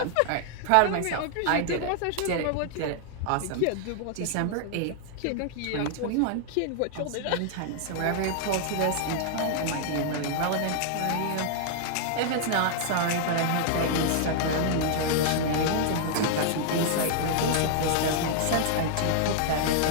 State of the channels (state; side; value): different; both; correlation -0.01